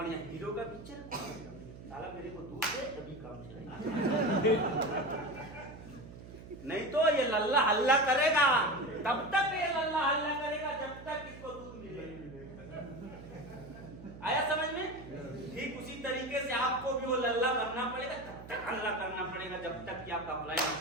हीरो का पिक्चर, साला मेरे को दूध दे तभी काम चलेगा, नहीं तो ये लल्ला हल्ला करेगा। तब तक ये लल्ला हल्ला करेगा जब तक इसको दूध मिले। आया समझ में? ठीक उसी तरीके से आपको भी वो लल्ला बनना पड़ेगा, तब तक हल्ला करना पड़ेगा जब तक कि आपका प्लान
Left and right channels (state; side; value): noise; right; hum, 15 dB below the sound